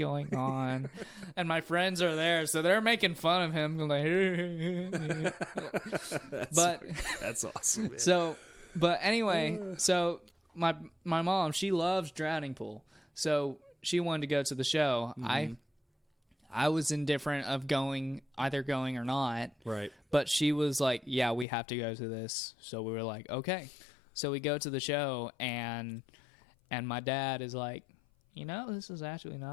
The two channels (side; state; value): right; drops out; at 21.5 s